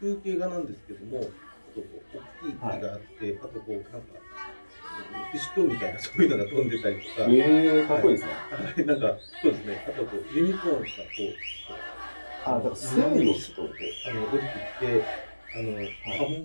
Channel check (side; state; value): both; inverted; correlation -1.00